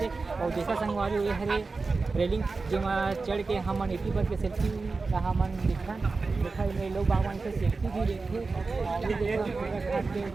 और देखा संगवारी ये हरे रेलिंग जो चढ़ के हम एक ही बार के सेल्फी का मन देखा लोग बागवान से सेल्फी भी देखते घाट के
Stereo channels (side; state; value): left; quieter; 4.0 dB